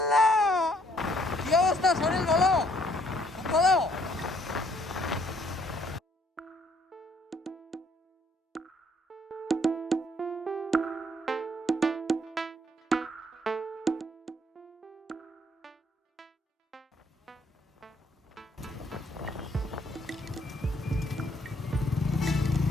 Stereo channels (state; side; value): normal; both; correlation 0.66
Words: লা। কি অবস্থা শরীর? ভালো ভালো।